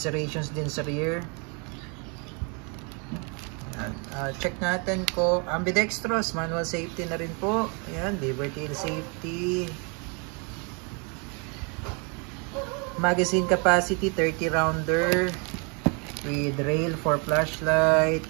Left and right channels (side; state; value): left; quieter; 34.3 dB